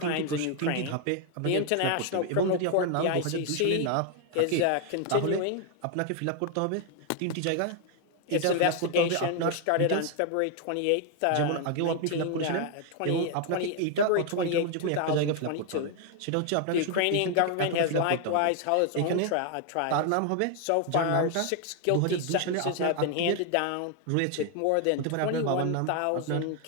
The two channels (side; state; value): both; different; correlation 0.00